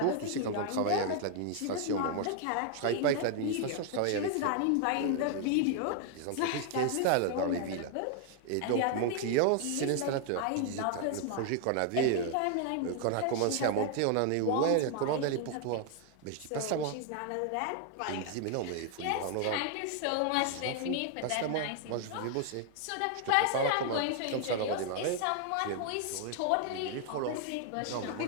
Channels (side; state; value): both; different; correlation 0.00